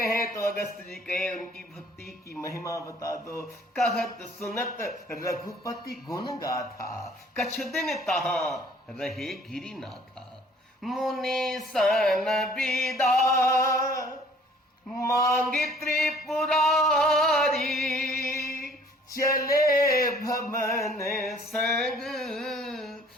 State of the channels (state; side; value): normal; both; correlation 0.55